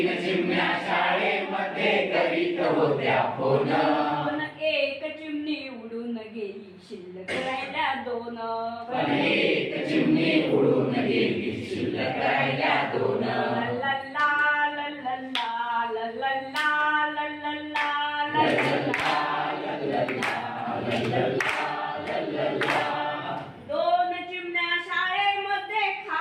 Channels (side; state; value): both; identical; correlation 1.00